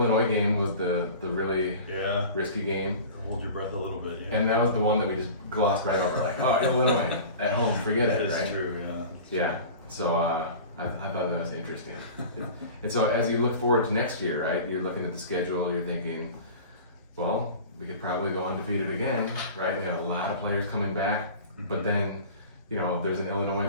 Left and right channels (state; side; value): inverted; both; correlation -0.38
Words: game was the really risky game. Hold your breath a little bit, yeah. And that was the one that we just glossed right over, like, oh, Illinois at home, forget it, right? That's true, yeah. Yeah, so I thought that was interesting. And so as you look forward to next year, right, you're looking at the schedule, you're thinking, well, we could probably go undefeated again, right? We have a lot of players coming back, but then, there's an Illinois